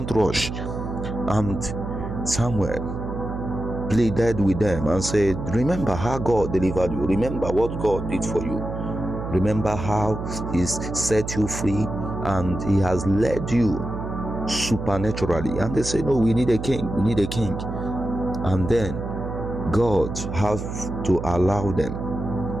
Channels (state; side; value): noise; right; hum, 6 dB below the sound